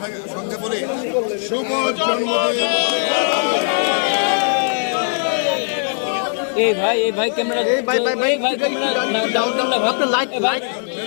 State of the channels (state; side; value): silent; right; digital silence